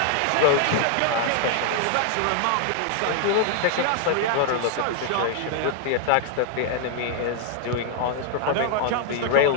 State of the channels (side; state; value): both; different; correlation 0.00